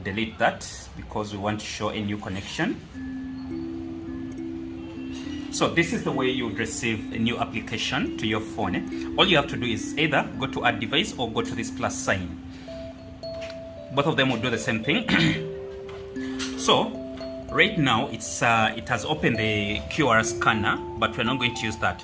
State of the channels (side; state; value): both; identical; correlation 1.00